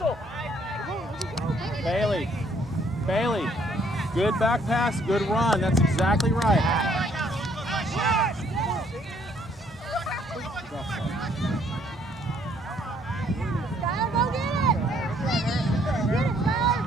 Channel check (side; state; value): both; normal; correlation 0.65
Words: Bailey. Good back pass. Good run. That's exactly right.